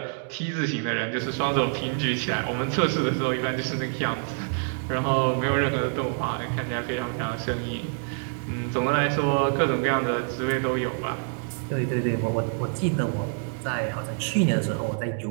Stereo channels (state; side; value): silent; left; 61 dB below the other